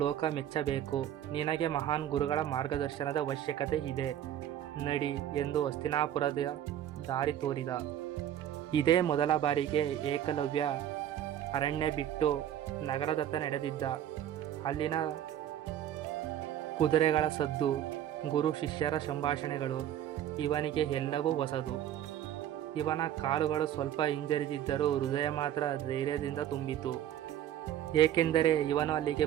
ಲೋಕ ಮೆಚ್ಚಬೇಕು. ನಿನಗೆ ಮಹಾನ್ ಗುರುಗಳ ಮಾರ್ಗದರ್ಶನದ ಅವಶ್ಯಕತೆ ಇದೆ. ನಡಿ ಎಂದು ಹಸ್ತಿನಾಪುರದ ದಾರಿ ತೋರಿದ. ಇದೇ ಮೊದಲ ಬಾರಿಗೆ ಏಕಲವ್ಯ ಅರಣ್ಯ ಬಿಟ್ಟು ನಗರದತ್ತ ನಡೆದಿದ್ದ. ಅಲ್ಲಿನ ಕುದುರೆಗಳ ಸದ್ದು, ಗುರು ಶಿಷ್ಯರ ಸಂಭಾಷಣೆಗಳು ಇವನಿಗೆ ಎಲ್ಲವೂ ಹೊಸದು. ಇವನ ಕಾಲುಗಳು ಸ್ವಲ್ಪ ಹಿಂಜರಿದಿದ್ದರೂ ಹೃದಯ ಮಾತ್ರ ಧೈರ್ಯದಿಂದ ತುಂಬಿತು. ಏಕೆಂದರೆ ಇವನು ಅಲ್ಲಿಗೆ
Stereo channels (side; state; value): left; quieter; 11.1 dB